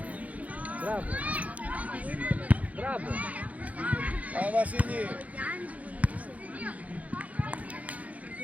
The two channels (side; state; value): left; late; 0.070 ms